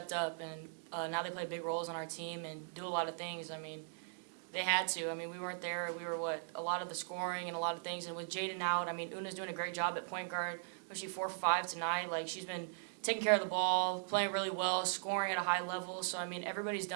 up, and now they play big roles on our team and do a lot of things. I mean, they had to. I mean, we weren't there. We were a lot of the scoring and a lot of things. And with Jaden out, I mean, Una's doing a great job at point guard, especially 4 for 5 tonight. She's been taking care of the ball, playing really well, scoring at a high level. So, I mean, everybody's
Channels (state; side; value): silent; left; digital silence